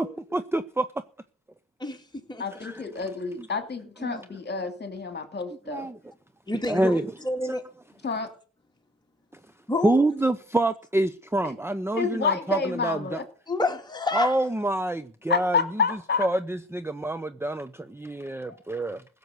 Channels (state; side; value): normal; both; correlation 0.54